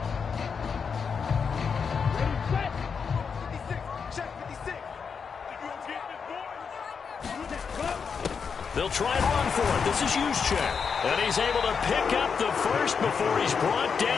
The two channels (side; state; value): right; quieter; 6.0 dB